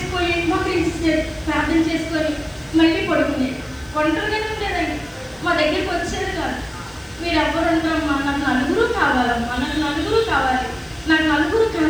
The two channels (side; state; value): left; noise; hiss, 29 dB below the sound